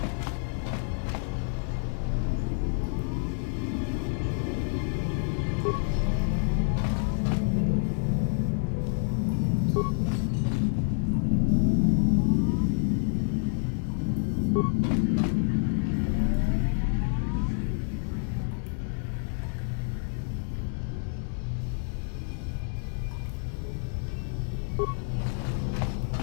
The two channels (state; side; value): silent; right; 59 dB below the other